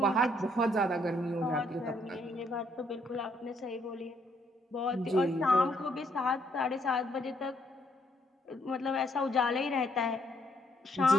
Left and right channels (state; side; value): normal; both; correlation 0.71